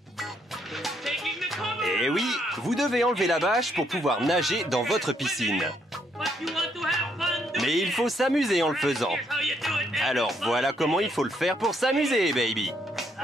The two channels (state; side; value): normal; both; correlation 0.72